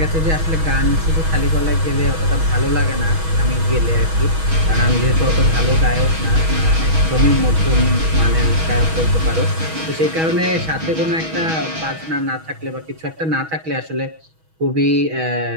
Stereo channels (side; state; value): left; late; 6.2 ms